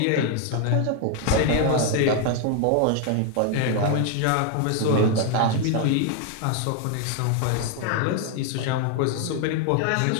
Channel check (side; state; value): both; different; correlation 0.01